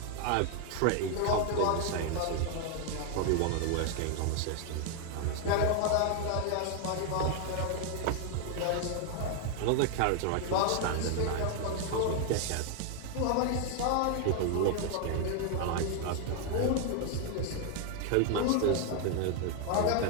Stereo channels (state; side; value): different; both; correlation 0.00